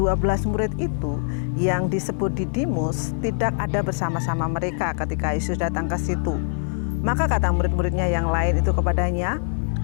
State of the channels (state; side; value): silent; right; 58 dB below the other